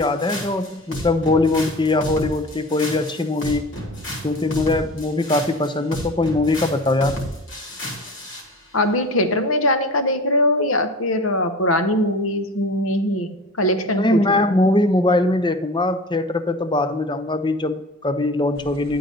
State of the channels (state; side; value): normal; both; correlation 0.36